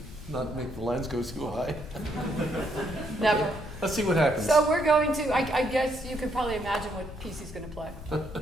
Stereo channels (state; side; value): noise; left; rumble, 13 dB below the sound